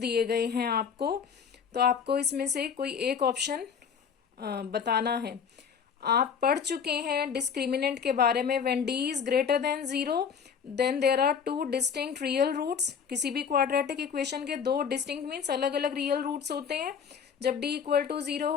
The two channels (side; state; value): right; quieter; 6.9 dB